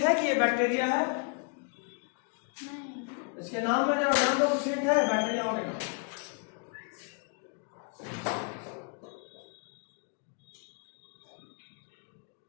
है कि ये बैक्टीरिया है? इसके नाम में कुछ हिंट है बैक्टीरिया होने का?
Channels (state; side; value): quieter; right; 38.2 dB